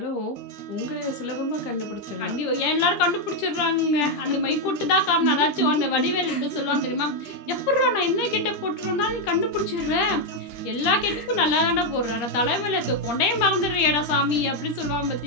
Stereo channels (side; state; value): right; late; 13 ms